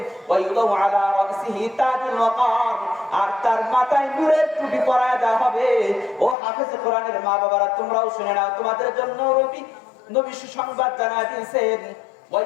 ওয়ায়ুদাউ আলা রাসিহি তাজুল ওয়াকার, আর তার মাথায় নূরের টুপি পরায়া দেওয়া হবে। ও হাফেজ কোরআনের মা বাবারা, তোমরাও শুনে নাও, তোমাদের জন্য নবী সুসংবাদ জানায় দিয়েছেন,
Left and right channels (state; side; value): drops out; right; at 6.4 s